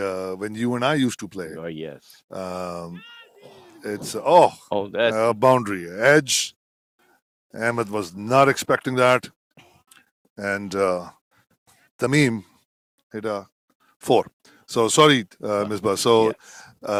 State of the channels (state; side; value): identical; both; correlation 1.00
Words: when you and I used to play, Oh yes. um, it's Oh, that. a boundary edge. Ahmed was not expecting that, and Tamim hit a 4. So sorry, Misbah. So